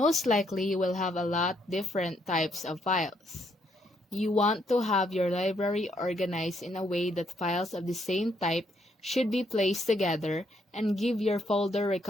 likely you will have a lot different types of files. You want to have your library organized in a way that files of the same type should be placed together and give your folder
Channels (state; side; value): normal; both; correlation 0.73